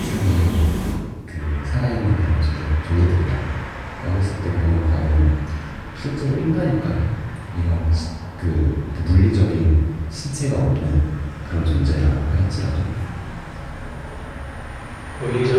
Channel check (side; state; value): both; identical; correlation 1.00